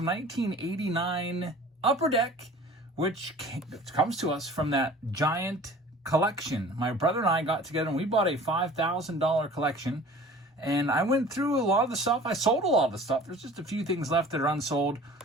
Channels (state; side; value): normal; both; correlation 0.45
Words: 1989 Upper Deck, which comes to us from that giant collection. My brother and I got together and we bought a $5,000 collection. And I went through a lot of the stuff. I sold a lot of the stuff. There's just a few things left that are unsold.